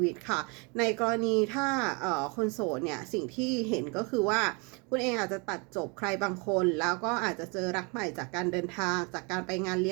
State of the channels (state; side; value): quieter; left; 31.4 dB